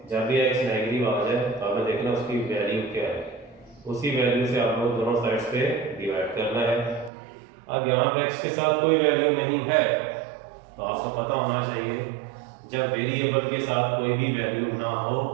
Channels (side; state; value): left; drops out; at 7.1 s